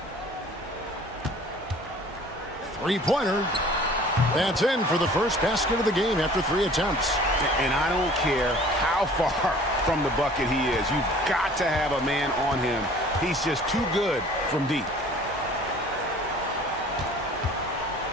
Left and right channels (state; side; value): normal; both; correlation 0.49